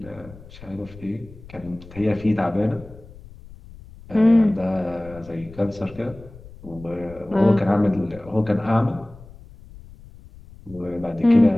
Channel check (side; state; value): left; noise; rumble, 19 dB below the sound